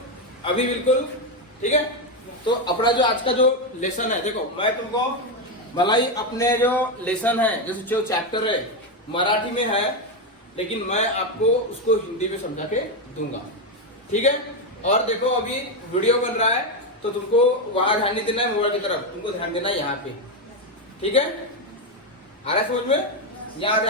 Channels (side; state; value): both; normal; correlation 0.07